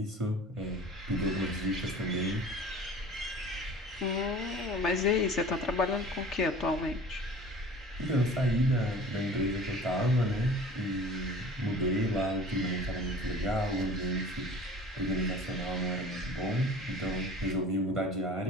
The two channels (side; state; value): both; normal; correlation 0.43